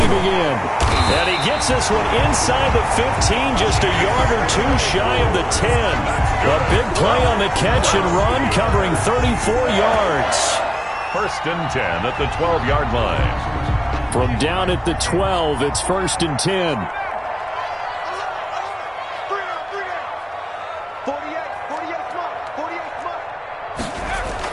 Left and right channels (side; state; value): both; identical; correlation 1.00